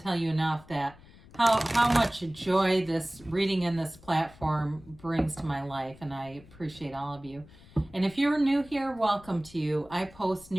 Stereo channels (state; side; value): noise; left; rumble, 22 dB below the sound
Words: tell you enough that how much joy this reading in this platform brings to my life, and I appreciate all of you. And if you're new here, welcome to you. I post